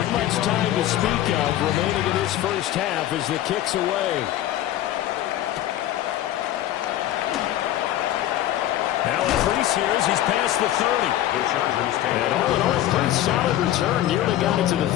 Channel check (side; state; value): right; quieter; 13.2 dB